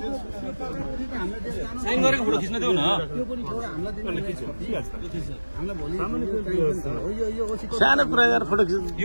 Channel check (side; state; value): both; inverted; correlation -1.00